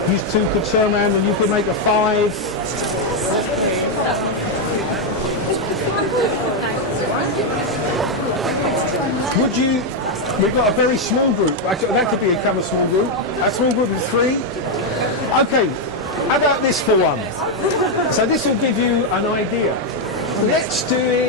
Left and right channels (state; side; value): normal; both; correlation 0.02